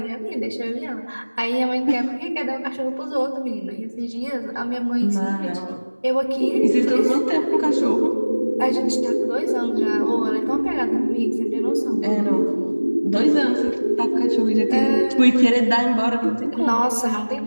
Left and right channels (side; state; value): both; inverted; correlation -1.00